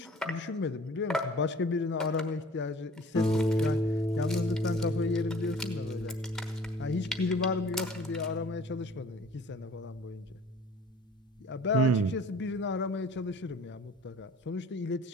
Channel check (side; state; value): both; normal; correlation 0.49